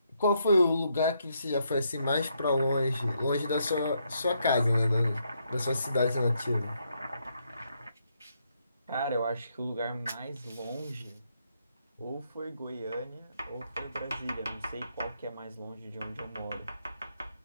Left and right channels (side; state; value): both; inverted; correlation -0.76